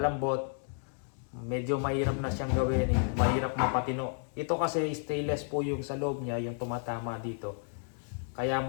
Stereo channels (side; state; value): right; silent; 56 dB below the other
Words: Medyo mahirap na siyang gawin. Mahirap mapatino. Ito kasi stainless po yung sa loob niya. Yung tumatama dito. Kaya